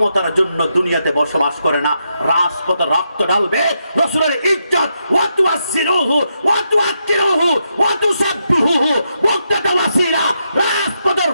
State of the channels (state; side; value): inverted; both; correlation -0.82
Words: জন্য দুনিয়াতে বসবাস করে না, রাজপথে রক্ত ঢালবে রাসূলের ইজ্জত ওয়া তুআসসিরুহু ওয়া তুআক্কিরুহু ওয়া তুসাব্বিহুহু ওয়াক্তাতা ওয়াসিলা, রাজপথে